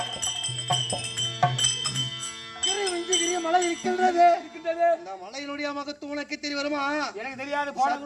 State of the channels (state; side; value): identical; both; correlation 1.00